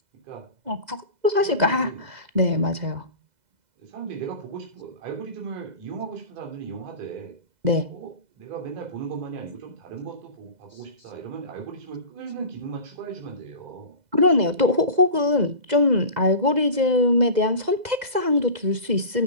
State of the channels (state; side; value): late; left; 2.0 ms